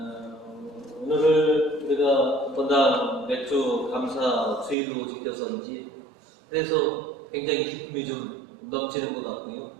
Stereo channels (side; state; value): left; drops out; at 4.8 s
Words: 오늘을 우리가 본당 맥주 감사 주일로 지켜서인지 그래서 굉장히 기쁨이 좀 넘치는 것 같고요.